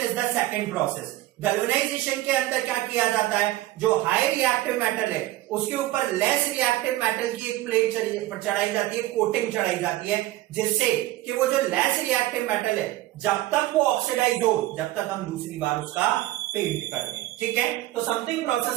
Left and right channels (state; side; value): quieter; left; 16.3 dB